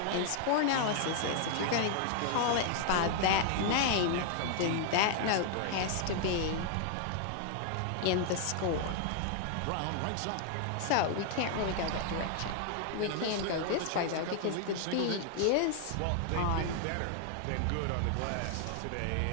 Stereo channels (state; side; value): different; both; correlation 0.00